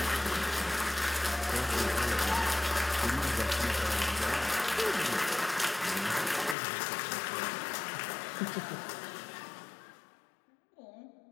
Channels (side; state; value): right; drops out; at 6.6 s